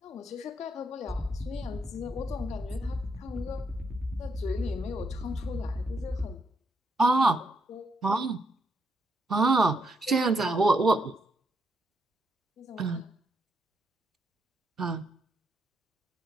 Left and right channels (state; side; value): normal; both; correlation 0.79